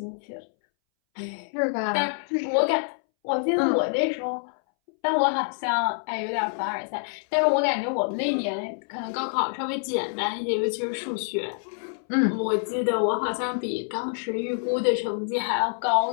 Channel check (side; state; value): right; silent; 61 dB below the other